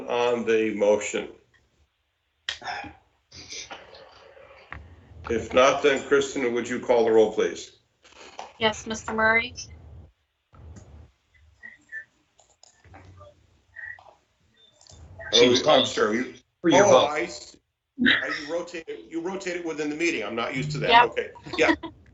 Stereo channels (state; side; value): identical; both; correlation 1.00